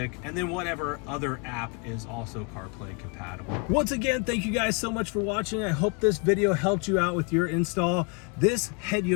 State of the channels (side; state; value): right; quieter; 34.7 dB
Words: and then whatever other app is also CarPlay compatible. Once again, thank you guys so much for watching. I hope this video helped you out with your install. This head